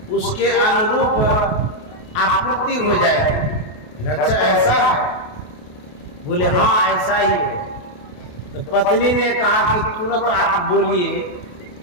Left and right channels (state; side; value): late; right; 28 ms